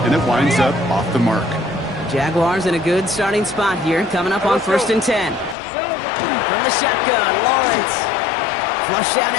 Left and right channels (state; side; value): drops out; right; at 5.6 s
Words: and it winds up off the mark. Jaguars in a good starting spot here, coming up on 1st and 10. From the shotgun, Lawrence. Flush down